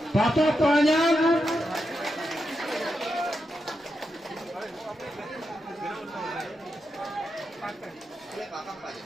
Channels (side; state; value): both; normal; correlation 0.86